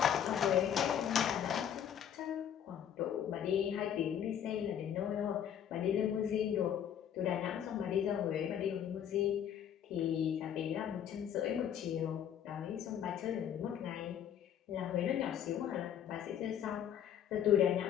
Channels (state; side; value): quieter; right; 9.4 dB